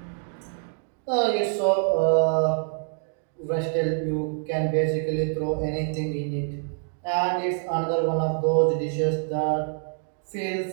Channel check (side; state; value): left; silent; 55 dB below the other